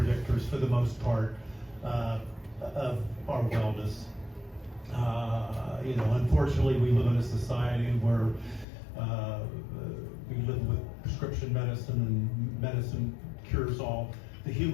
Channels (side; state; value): right; drops out; at 8.7 s